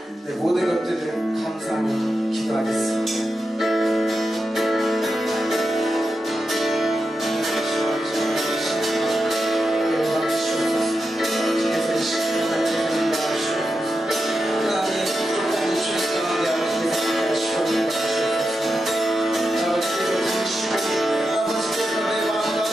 내 모든 것들을 감사하며 기도하겠습니다.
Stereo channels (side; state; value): both; normal; correlation 0.88